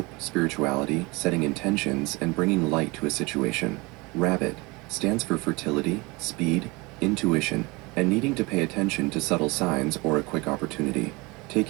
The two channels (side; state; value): left; quieter; 25.1 dB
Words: spirituality, setting intentions, and bringing light to a situation. Rabbit stands for fertility, speed, intuition, and needing to pay attention to subtle signs or a quick opportunity.